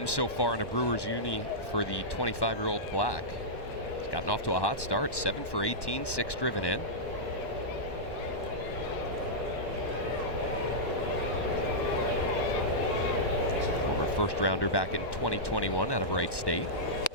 so far in a Brewers uni for the 25-year-old Black. He's gotten off to a hot start. 7 for 18, 6 driven in. First rounder back in 2021 out of Wright State.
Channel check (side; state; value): right; late; 1.1 ms